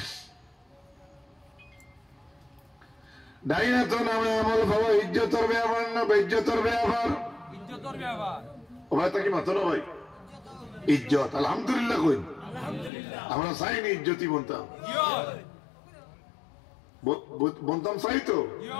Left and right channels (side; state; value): right; drops out; at 12.9 s